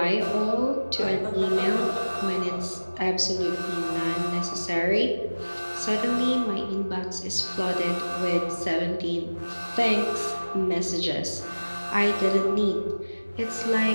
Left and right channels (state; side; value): inverted; both; correlation -1.00